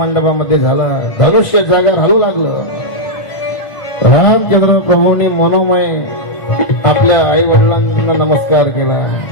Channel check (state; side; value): late; right; 1.5 ms